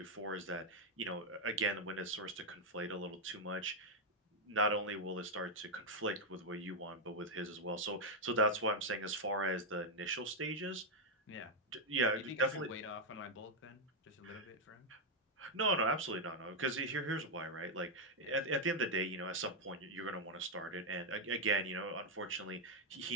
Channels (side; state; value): both; normal; correlation -0.01